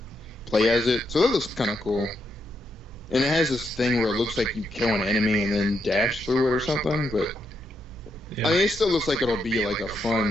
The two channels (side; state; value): both; normal; correlation 0.79